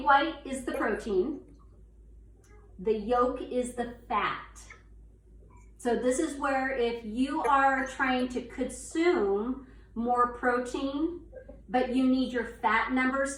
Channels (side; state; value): both; identical; correlation 1.00